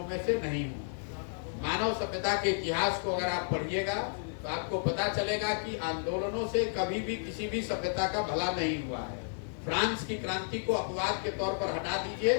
में से नहीं हूँ। मानव सभ्यता के इतिहास को अगर आप पढ़िएगा तो आपको पता चलेगा कि आंदोलनों से कभी भी किसी भी सभ्यता का भला नहीं हुआ है। फ्रांस की क्रांति को अपवाद के तौर पर हटा दीजिए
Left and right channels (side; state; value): right; silent; digital silence